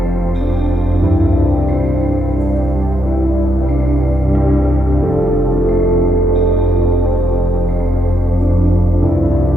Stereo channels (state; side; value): normal; both; correlation 0.81